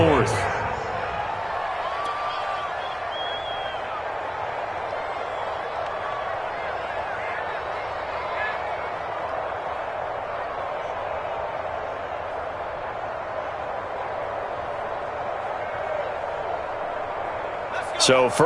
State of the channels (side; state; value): both; identical; correlation 1.00